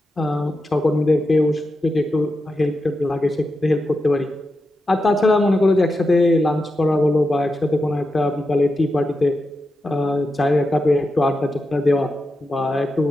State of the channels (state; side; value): normal; both; correlation 0.89